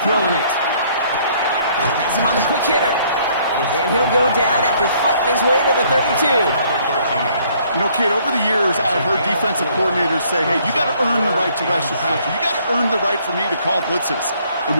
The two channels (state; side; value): inverted; both; correlation -0.63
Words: throwing it. Has him on the quick hitter. And he'll go down after fighting his way to the 32. You know, kid, over the years, I've heard defensive coordinators say, hey, you got to earn the right to rush your passer. You got to earn the right for me to call blitzes. And